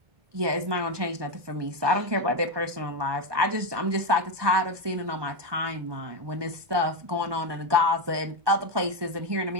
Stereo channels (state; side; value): late; left; 1.2 ms